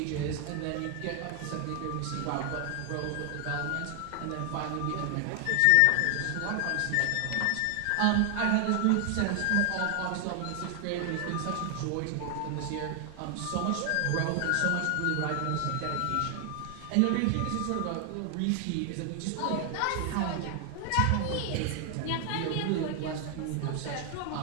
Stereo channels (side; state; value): both; different; correlation 0.00